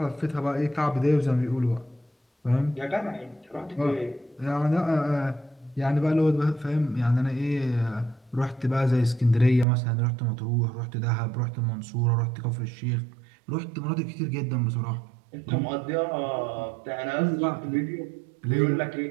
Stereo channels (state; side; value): drops out; left; at 9.7 s